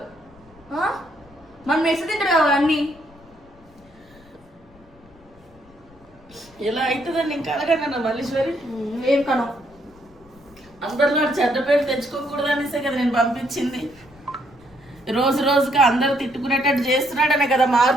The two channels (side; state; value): left; noise; rumble, 27 dB below the sound